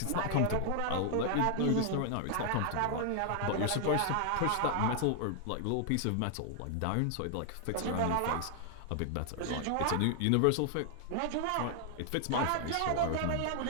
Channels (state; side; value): different; both; correlation 0.00